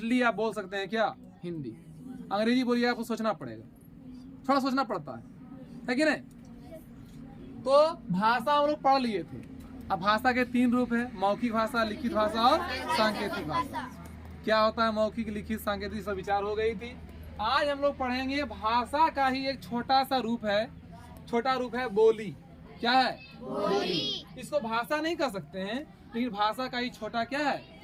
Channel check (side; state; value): both; identical; correlation 1.00